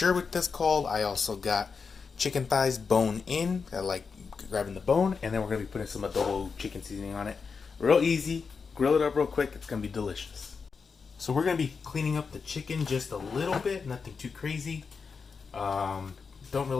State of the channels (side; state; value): right; quieter; 5.3 dB